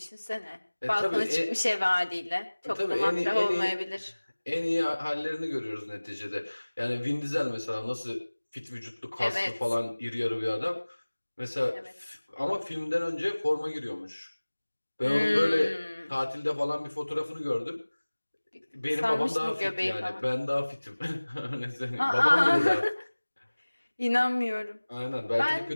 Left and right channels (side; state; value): both; inverted; correlation -1.00